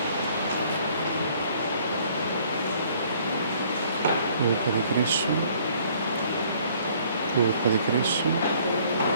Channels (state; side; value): inverted; both; correlation -0.60